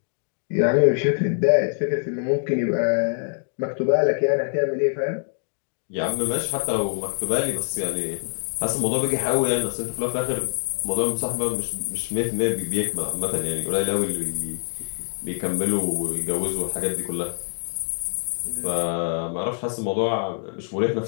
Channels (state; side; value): silent; right; digital silence